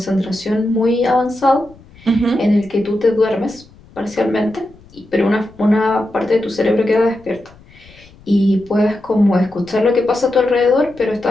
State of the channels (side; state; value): left; noise; rumble, 25 dB below the sound